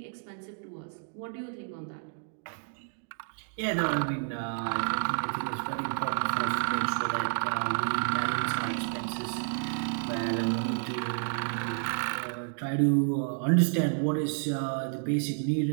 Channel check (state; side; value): silent; left; 58 dB below the other